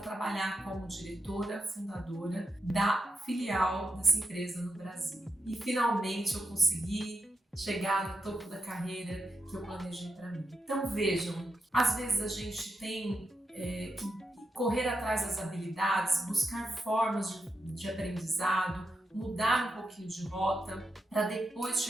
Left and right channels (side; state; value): both; normal; correlation 0.86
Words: como diretora fundadora da filial dessa empresa no Brasil. E finalmente eu consegui chegar no topo da carreira que eu planejei para mim. Então vejam, às vezes a gente tem que correr atrás das habilidades, buscar formas de aprendizado, mudar um pouquinho de rota para depois